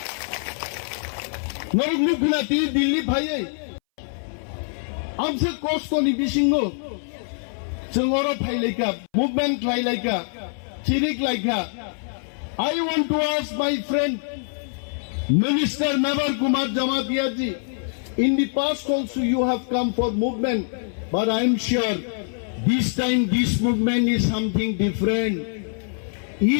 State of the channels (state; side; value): silent; right; 61 dB below the other